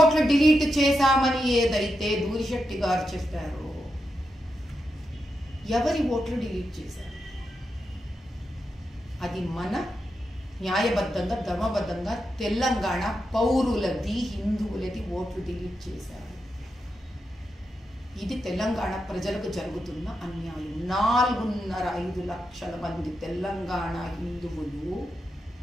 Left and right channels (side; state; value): both; normal; correlation 0.86